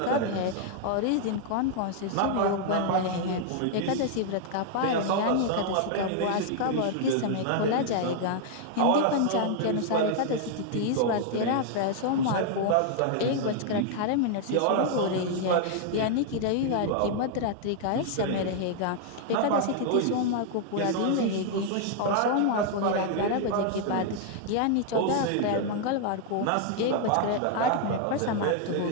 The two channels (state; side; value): different; both; correlation 0.00